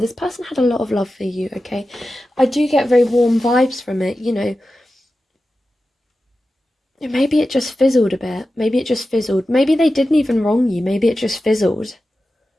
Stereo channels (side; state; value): both; normal; correlation 0.93